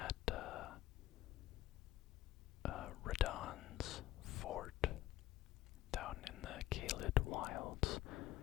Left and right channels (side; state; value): right; quieter; 14.8 dB